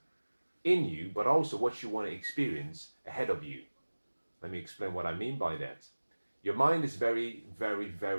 in you, but also what you want to experience ahead of you. Let me explain what I mean by that. Your mind is very, very,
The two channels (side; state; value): both; inverted; correlation -1.00